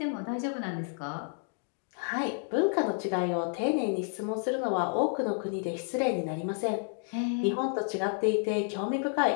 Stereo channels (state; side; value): silent; right; 57 dB below the other